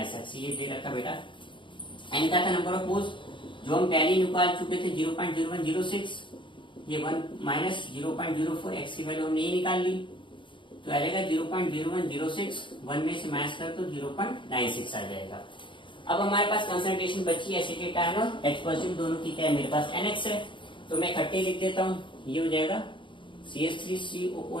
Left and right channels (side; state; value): right; late; 0.24 ms